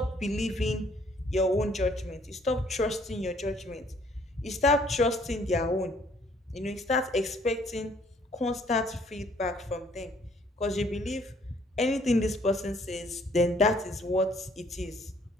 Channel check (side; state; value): both; normal; correlation 0.62